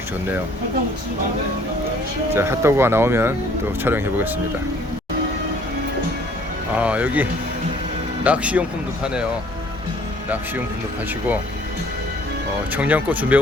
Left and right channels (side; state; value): both; normal; correlation 0.58